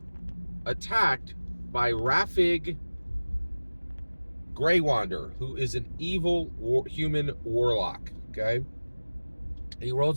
attacked by Rafig Greywander, who is an evil human warlock. Okay. He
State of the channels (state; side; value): inverted; both; correlation -1.00